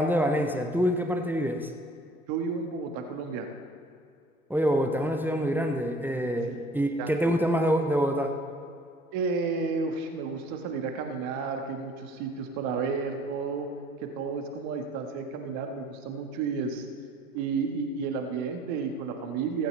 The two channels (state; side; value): normal; both; correlation 0.53